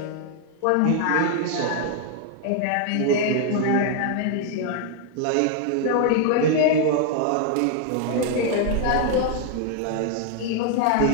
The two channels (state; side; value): different; both; correlation 0.00